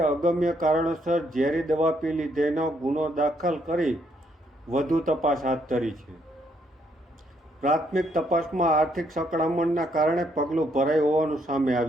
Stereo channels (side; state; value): both; normal; correlation 0.72